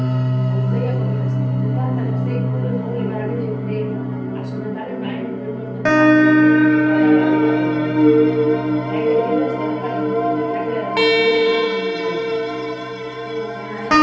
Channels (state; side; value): identical; both; correlation 1.00